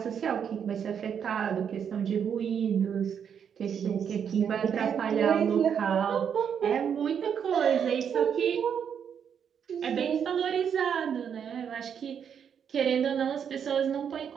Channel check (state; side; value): quieter; left; 7.8 dB